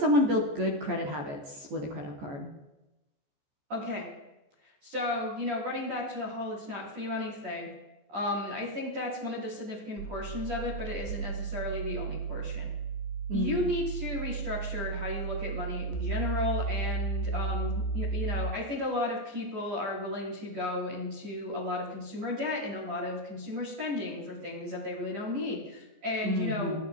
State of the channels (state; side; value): late; left; 14 ms